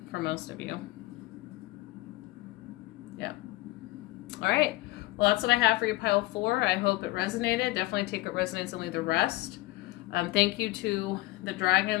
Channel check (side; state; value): right; quieter; 19.2 dB